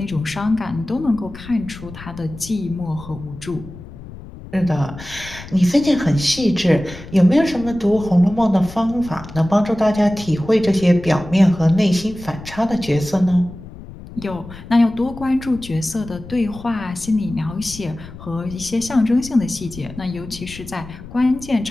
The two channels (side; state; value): left; noise; rumble, 15 dB below the sound